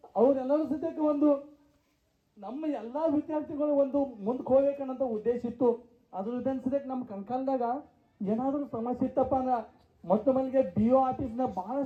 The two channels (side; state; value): both; identical; correlation 1.00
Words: ಅವರೆಲ್ಲರೂ ಸದ್ಯಕ್ಕೆ ಒಂದು ನಮ್ಮ ಎಲ್ಲ ವಿದ್ಯಾರ್ಥಿಗಳು ಒಂದು ಮುಂದಕ್ಕೆ ಹೋಗ್ಬೇಕನ್ನೋಂಥ ಉದ್ದೇಶ ಇತ್ತು. ಅದ್ರ ಜೊತೆ ಸದ್ಯಕ್ಕೆ ನಮ್ಮ ಕಣ್ಕಾಲ್ದಾಗ ಏನಾದರೂ ಸಮಸ್ಯೆ ಇತ್ತಪ್ಪ ಅಂದ್ರೆ ಮೊಟ್ಟ ಮೊದಲಿಗೆ BO ಆಫೀಸ್ನ